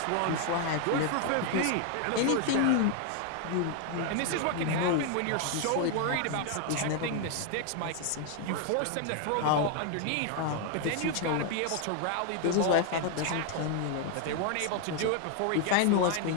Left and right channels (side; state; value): both; different; correlation 0.01